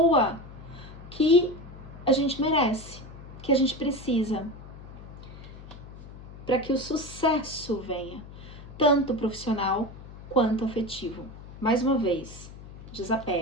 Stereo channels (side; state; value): left; noise; hum, 15 dB below the sound